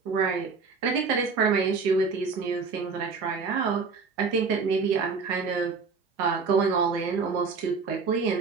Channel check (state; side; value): quieter; left; 4.9 dB